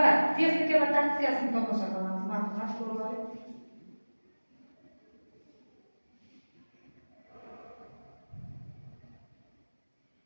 texnika va taktikasini tomosha qilamiz. Marhamat, ko'rib oling.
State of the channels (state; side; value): inverted; both; correlation -1.00